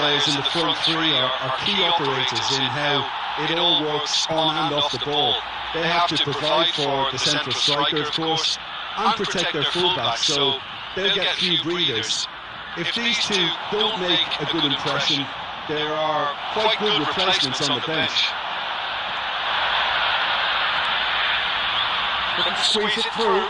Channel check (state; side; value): identical; both; correlation 1.00